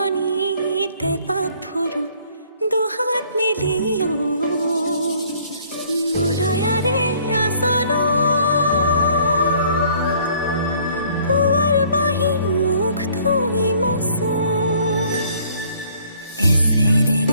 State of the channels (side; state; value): both; inverted; correlation -0.59